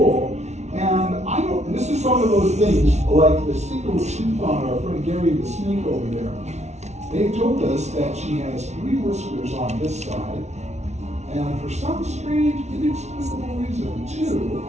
and I don't, this is one of those things, like the single tooth on our friend Gary the snake over there. They told us that she has 3 whiskers on this side, and for some strange, inexplicable reason, 2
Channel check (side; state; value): left; late; 0.32 ms